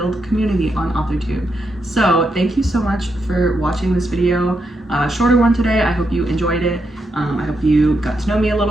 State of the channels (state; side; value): normal; both; correlation 0.83